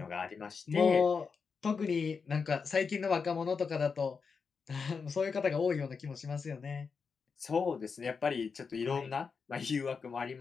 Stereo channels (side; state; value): right; quieter; 5.4 dB